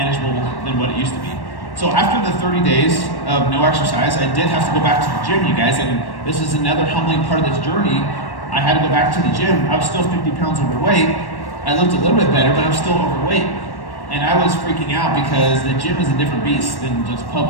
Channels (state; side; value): late; right; 1.1 ms